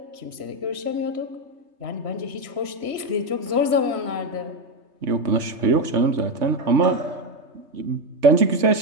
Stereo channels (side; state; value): left; late; 3.3 ms